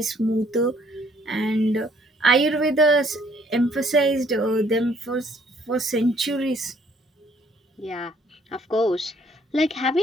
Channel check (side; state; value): both; normal; correlation 0.63